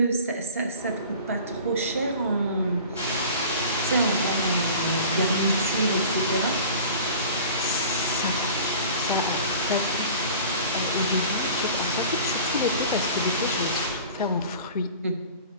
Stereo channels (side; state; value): both; inverted; correlation -0.42